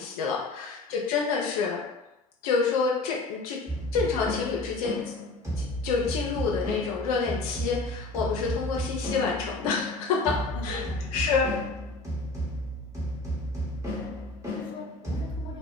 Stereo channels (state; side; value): quieter; right; 3.4 dB